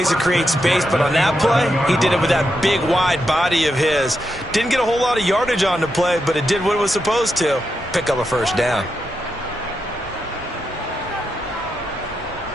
to create space, but on that play, he did it with that big, wide body of his. Didn't get a whole lot of yardage on the play, but it did what it was supposed to. Pick up a first down.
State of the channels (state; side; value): normal; both; correlation 0.85